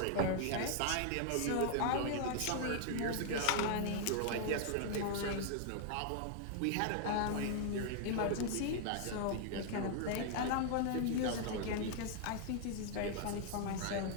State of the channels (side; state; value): both; different; correlation 0.00